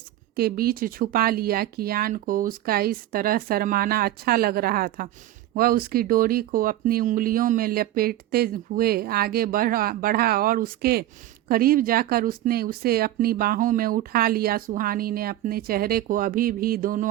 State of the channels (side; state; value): left; quieter; 14.2 dB